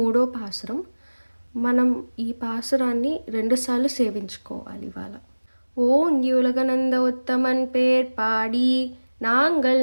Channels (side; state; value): both; inverted; correlation -1.00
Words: పాసురం. మనం ఈ పాసురాన్ని 2 సార్లు సేవించుకోవాలి ఇవాళ. ఓంగి ఉలగనంద ఉత్తమన్ పేర్ పాడి நாங்கள்